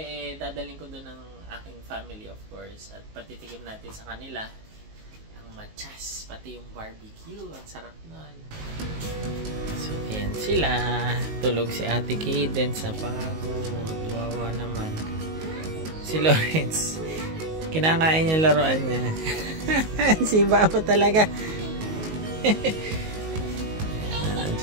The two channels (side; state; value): left; late; 19 ms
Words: dadalhin ko doon ng aking family, of course. At patitikim natin sa kanila machas, pati yung barbecue. Ang sarap nun. So, ayan sila. Tulog si Ate Cadence sa pagod. Wawa naman. Si Lawrence, kinakain yung laruan niya. Si Babo talaga.